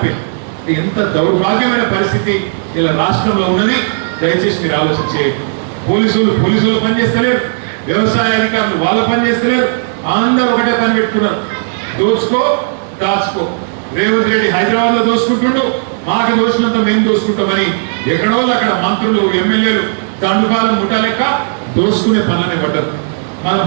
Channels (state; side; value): silent; left; digital silence